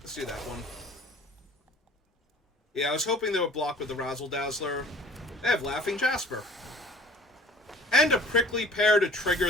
do that one. Yeah, I was hoping they would block with the Razzle Dazzler. They have Laughing Jasper. And a Prickly Pear to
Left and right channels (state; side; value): normal; both; correlation 0.49